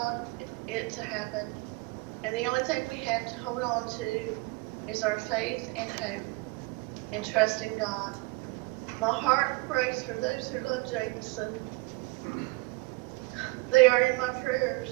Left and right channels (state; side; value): quieter; left; 25.1 dB